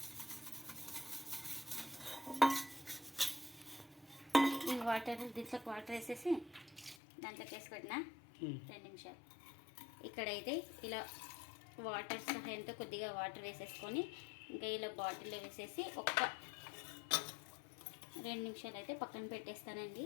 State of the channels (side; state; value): right; drops out; at 7.0 s